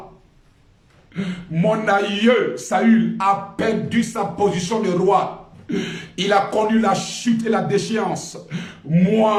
Mon aïeux, Saül, a perdu sa position de roi. Il a connu la chute et la déchéance.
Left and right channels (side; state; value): both; identical; correlation 1.00